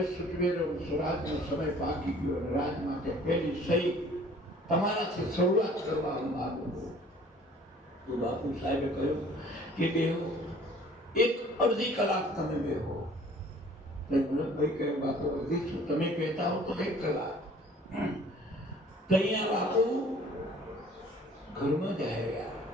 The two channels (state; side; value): normal; both; correlation 0.53